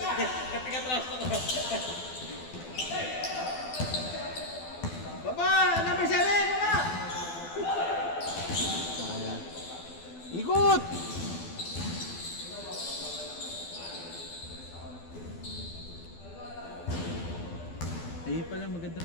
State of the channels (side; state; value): right; late; 12 ms